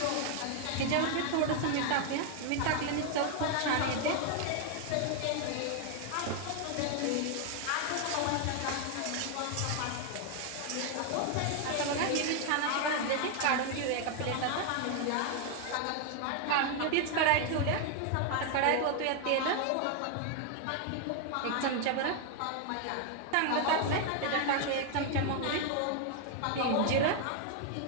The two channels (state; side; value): different; both; correlation 0.00